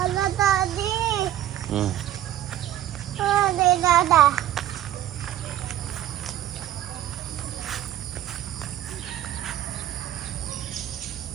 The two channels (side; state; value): left; quieter; 12.4 dB